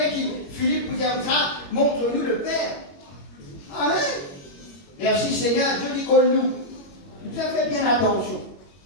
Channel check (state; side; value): late; right; 21 ms